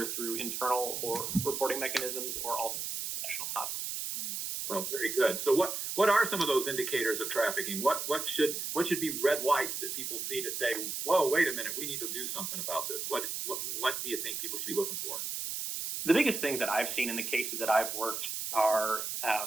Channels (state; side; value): noise; right; hiss, 4 dB below the sound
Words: through internal or reporting mechanisms or all national hotline. Well, very good. So what are some of those indicators of trafficking? What should be red lights that people see to say, whoa, wait a minute, we need to do something about this? What do you think people should be looking for? The biggest things that I've seen in the cases that I've worked are